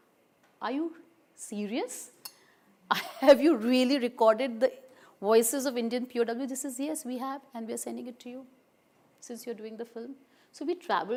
are you serious? Have you really recorded the voices of Indian POW? This is, yes, we have, and we are sending it to you since you're doing the film. So we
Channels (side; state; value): both; identical; correlation 1.00